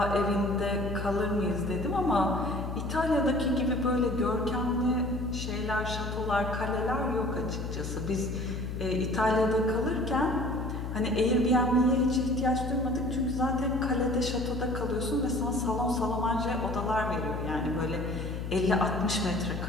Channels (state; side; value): noise; left; hum, 5 dB below the sound